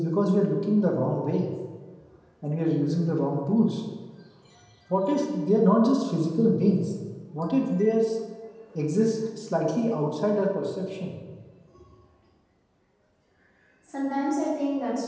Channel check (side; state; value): both; identical; correlation 1.00